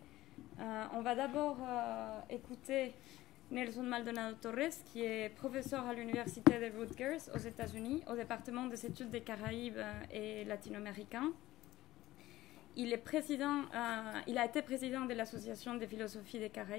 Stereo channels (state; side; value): quieter; right; 16.4 dB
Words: On va d'abord écouter Nelson Maldonado Torres, qui est professeur à l'Université de Rutgers aux États-Unis, au département des études des Caraïbes et latino-américains. Il a été président de l'Association des philosophies des